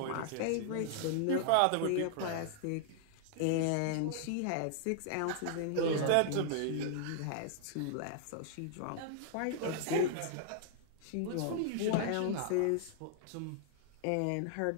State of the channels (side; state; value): both; different; correlation -0.01